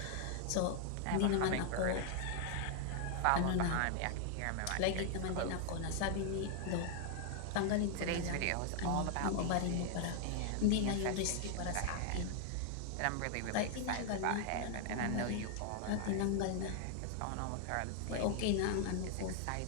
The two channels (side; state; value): both; different; correlation 0.00